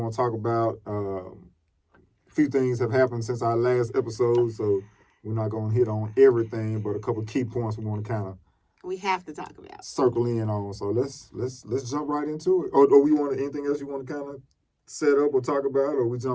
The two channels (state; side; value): identical; both; correlation 1.00